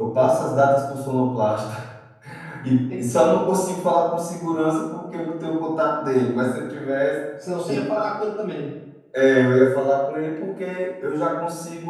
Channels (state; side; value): identical; both; correlation 1.00